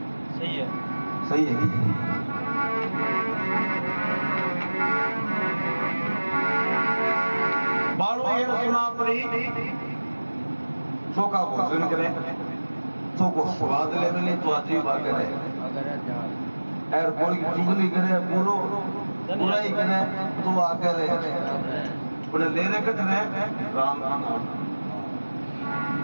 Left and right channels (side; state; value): both; inverted; correlation -1.00